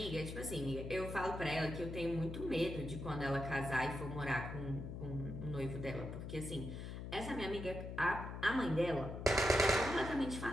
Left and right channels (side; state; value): left; noise; hum, 7 dB below the sound